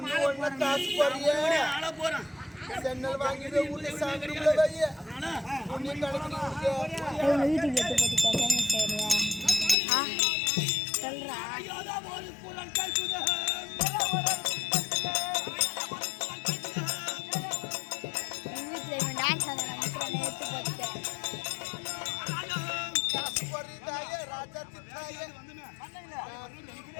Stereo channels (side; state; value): right; drops out; at 9.8 s